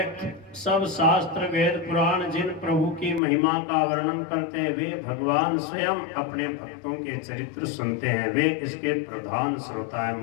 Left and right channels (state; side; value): drops out; right; at 3.2 s